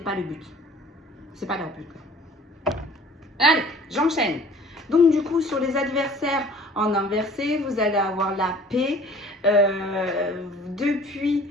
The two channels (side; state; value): both; normal; correlation 0.50